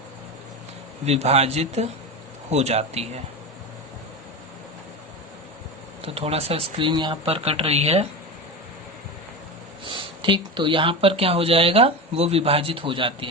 विभाजित हो जाती है। तो थोड़ा सा स्क्रीन यहाँ पर कट रही है, ठीक। तो यहाँ पर क्या हो जाएगा, वो विभाजित हो जाती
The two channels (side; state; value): both; normal; correlation 0.23